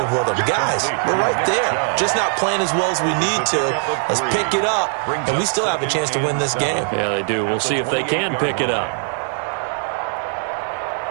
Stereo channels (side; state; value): left; silent; 56 dB below the other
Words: with them. Guys, we're right there. Just not playing as well as we need to. Let's pick it up, and we still have a chance to win this game. Yeah, they do. We'll see if they can pick it up.